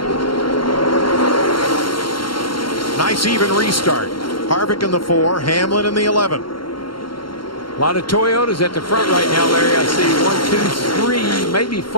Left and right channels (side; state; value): right; late; 0.73 ms